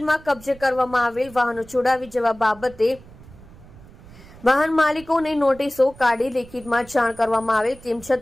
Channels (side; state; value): right; noise; rumble, 21 dB below the sound